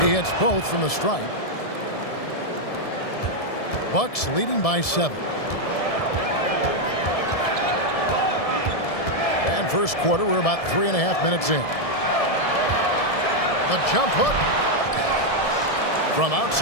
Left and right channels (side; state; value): right; late; 1.7 ms